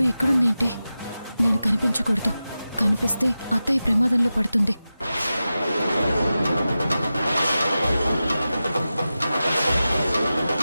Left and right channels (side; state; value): both; inverted; correlation -0.94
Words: ఎక్కడుందేంటి? నేను కనిపించకూడదు. కనిపిస్తే అత్తయ్య ప్రమాదంలో పడుతుంది.